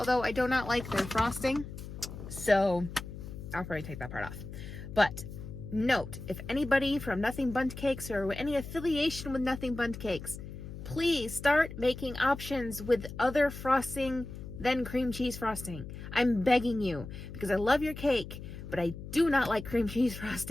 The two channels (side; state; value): left; noise; hum, 11 dB below the sound